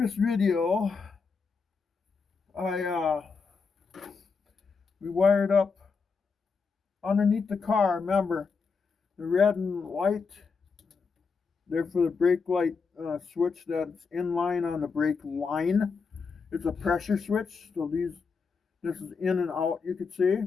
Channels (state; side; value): quieter; right; 5.1 dB